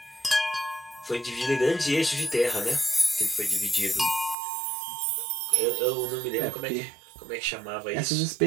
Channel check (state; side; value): drops out; left; at 4.4 s